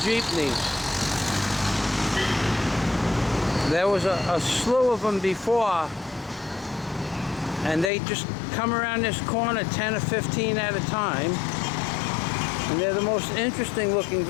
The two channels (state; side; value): drops out; right; at 7.9 s